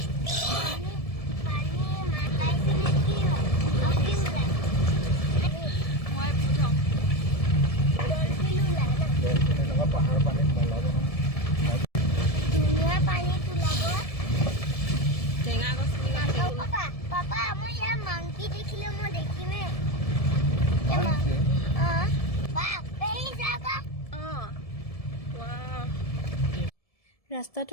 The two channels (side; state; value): right; late; 1.7 ms